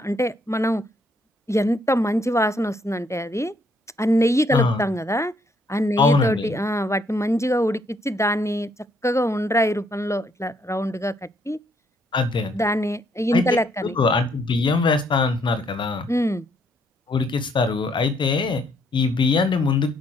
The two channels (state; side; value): normal; both; correlation 0.69